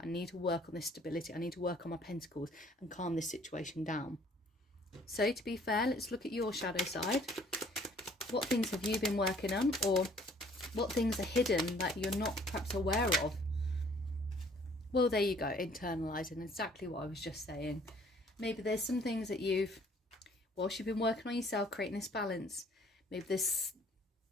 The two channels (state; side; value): normal; both; correlation 0.58